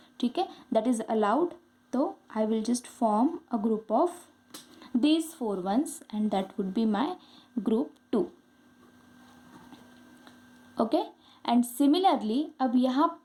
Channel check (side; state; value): both; identical; correlation 1.00